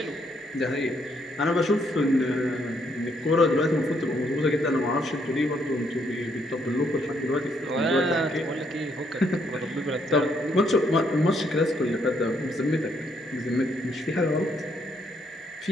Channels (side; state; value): both; normal; correlation 0.72